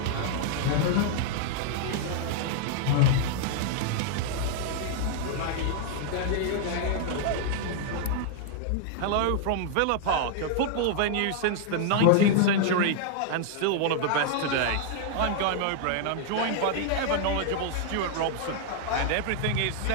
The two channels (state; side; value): different; both; correlation 0.00